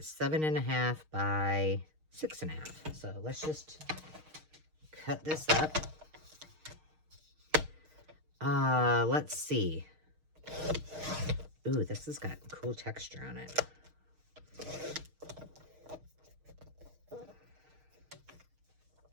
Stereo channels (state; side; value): late; left; 6.5 ms